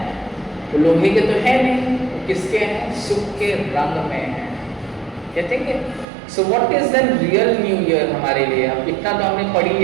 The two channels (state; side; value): drops out; left; at 6.1 s